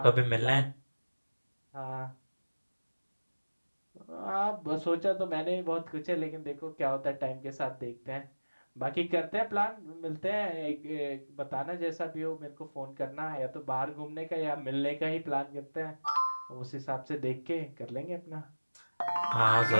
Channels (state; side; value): inverted; both; correlation -1.00